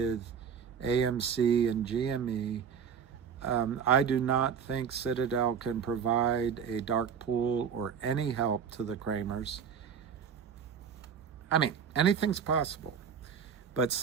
AMC and GME. I do not think Citadel can provide a dark pool or any help to the Kramers. I mean, anything's possible. But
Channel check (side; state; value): left; quieter; 7.1 dB